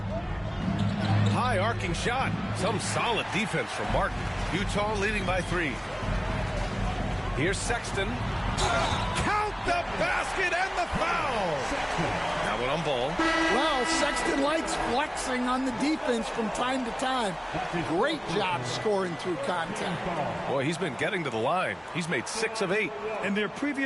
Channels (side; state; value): both; identical; correlation 1.00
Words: High arcing shot. Some solid defense from Martin. Utah leading by 3. Here's Sexton. Count the basket and the foul. That one on ball. Well, Sexton likes flexing on the defense from time to time. Great job scoring through contact. Boy, he's been getting to the line. He's made 6 of 8. In their